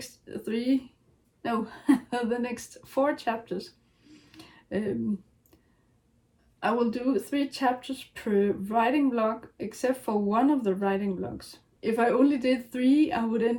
the next 4 chapters. I will do 3 chapters per writing vlog, except for one of the writing vlogs. If I only did 3, I would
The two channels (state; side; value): identical; both; correlation 1.00